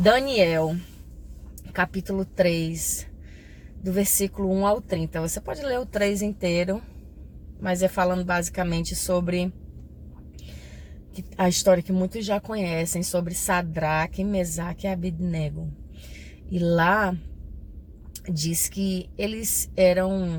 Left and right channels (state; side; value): identical; both; correlation 1.00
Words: capítulo 3, do versículo 1 ao 30. Você pode ler o 3 inteiro, mas é falando basicamente sobre a história que muitos já conhecem, sobre Sadraque, Mesaque e Abednego. E lá diz que eles